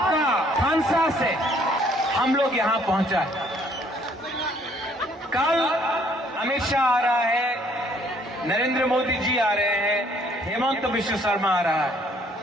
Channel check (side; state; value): both; normal; correlation 0.63